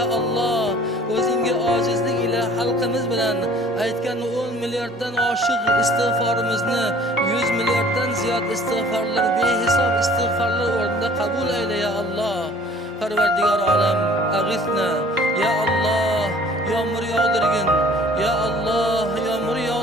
Alloh, o'zingga ojizlik ila xalqimiz bilan aytgan 10 milliarddan oshiq istig'forimizni 100 milliarddan ziyod istig'forlar, behisob istig'forlar o'rnida qabul ayla ya Alloh. Parvardigor olam, ag'ithna ya Alloh, yomg'ir yog'dirgin. Ya Alloh, yomg'ir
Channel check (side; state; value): both; normal; correlation 0.52